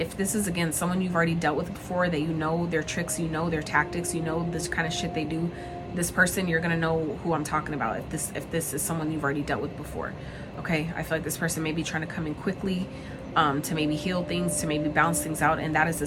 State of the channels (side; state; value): both; identical; correlation 1.00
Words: this is, again, someone you've already dealt with before, that you know their tricks, you know their tactics, you know this kind of shit they do, this person, you're going to know who I'm talking about if this is someone you've already dealt with before, okay? I feel like this person may be trying to come in quickly, to maybe heal things, to maybe balance things out, and that is